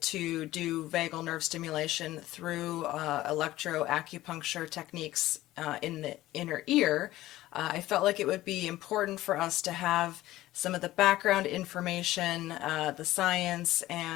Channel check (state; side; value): quieter; right; 15.9 dB